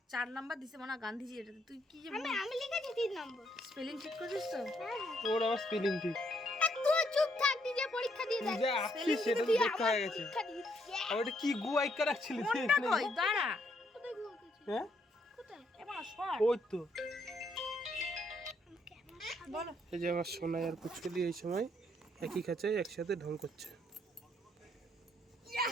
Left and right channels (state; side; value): normal; both; correlation 0.72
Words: 4 নাম্বার দিছে মানে গান্ধীজি, এটা তুই কি যে আমি লিখেছি 3 নম্বর। স্পেলিং ঠিক করেছিস তো? হ্যাঁ ওর আবার স্পেলিং ঠিক। তুই চুপ থাক, নিজে পরীক্ষা দিয়ে তুই দেখ। যা আসছিস সেটা তো দেখতে হয়ে গেছে। পরীক্ষা দিয়েছি। আর ওটা কি গু আইকা রাখছিলি তুই কোনটা এখানে? কই দাঁড়া কোথায় গুয়াকেছি? হ্যাঁ কোথায়? এবার শর্ট ওই তো। বলো। এই যে আমার সোনাই আর পুচকুলি এই সময় একই খাঁচায় একসাথে ঢং করছে।